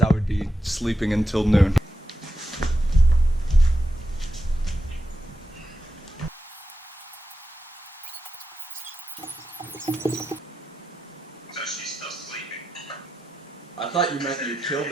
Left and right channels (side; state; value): both; normal; correlation 0.88